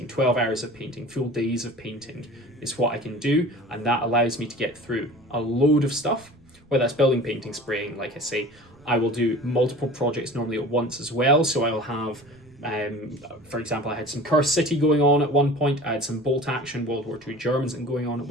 12 hours of painting, full days of painting is what I can do, and that allows me to get through a load of stuff, whether that's building, painting, spraying. Like I say, I will do multiple projects normally at once as well, so I will have for example, I had some Cursed City going on at one point, I had some Bolt Action World War II Germans going on at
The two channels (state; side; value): noise; right; rumble, 29 dB below the sound